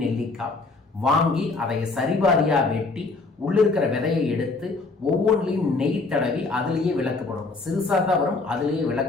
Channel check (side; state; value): right; quieter; 3.7 dB